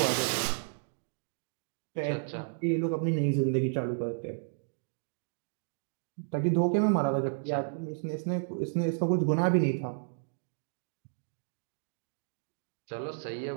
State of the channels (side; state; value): left; silent; digital silence